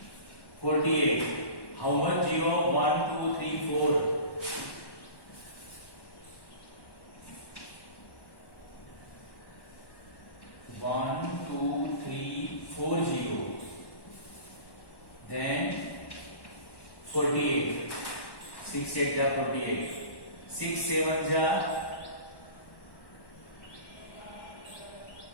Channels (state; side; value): late; right; 1.1 ms